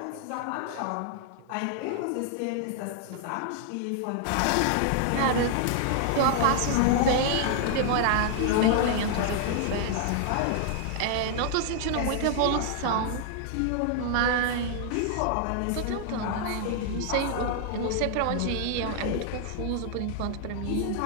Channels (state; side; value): different; both; correlation 0.00